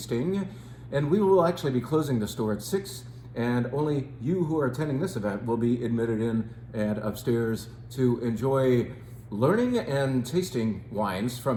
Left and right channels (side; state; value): both; identical; correlation 1.00